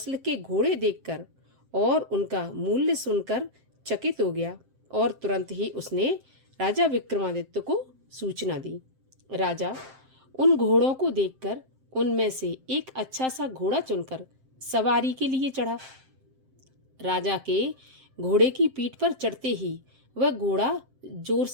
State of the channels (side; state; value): left; late; 7.6 ms